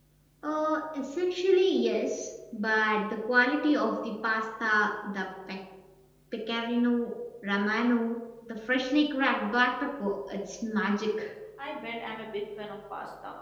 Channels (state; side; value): identical; both; correlation 1.00